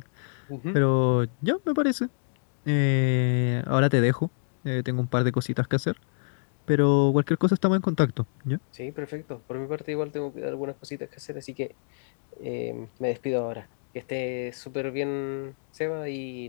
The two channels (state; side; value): silent; right; digital silence